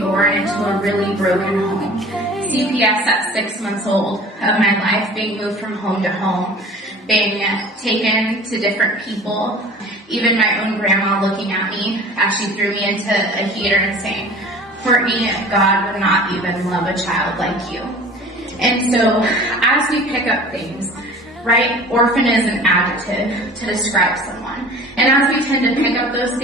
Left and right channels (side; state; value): both; normal; correlation 0.43